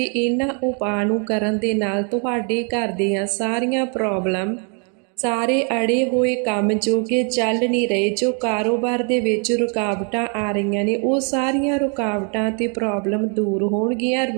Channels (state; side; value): quieter; left; 38.9 dB